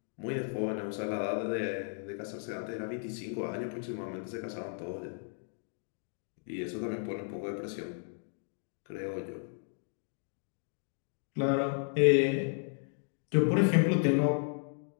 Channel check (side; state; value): right; silent; 55 dB below the other